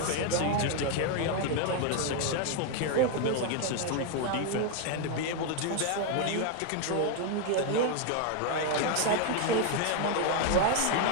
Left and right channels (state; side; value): different; both; correlation 0.01